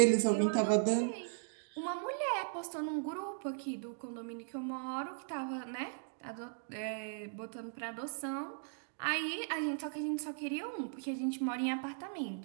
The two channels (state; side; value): silent; left; digital silence